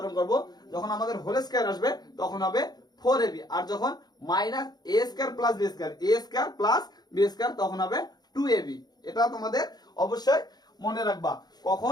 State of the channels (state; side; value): late; right; 0.19 ms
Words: করব, যখন আমাদের হোল স্কয়ার আসবে তখন হবে 4ab। আর যখন minus a square plus B square, a square plus B square, তখন হবে 2ab। এটা তোমাদের অবশ্যই মনে রাখবা,